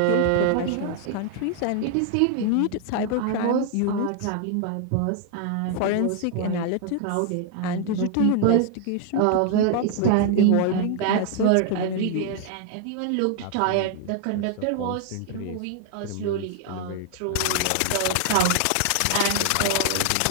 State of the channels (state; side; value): different; both; correlation 0.00